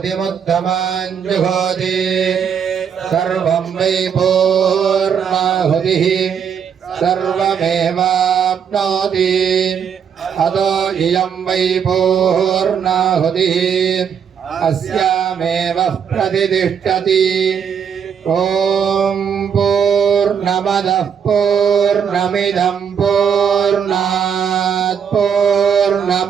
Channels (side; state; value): left; quieter; 7.5 dB